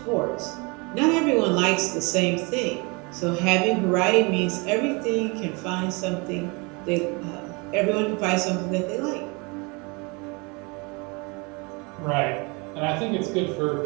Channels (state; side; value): quieter; left; 29.2 dB